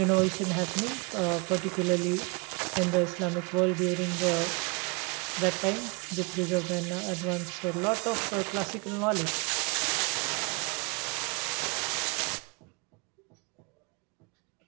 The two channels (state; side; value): quieter; left; 31.2 dB